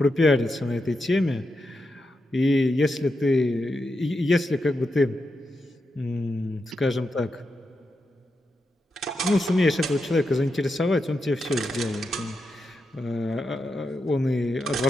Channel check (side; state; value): both; normal; correlation 0.86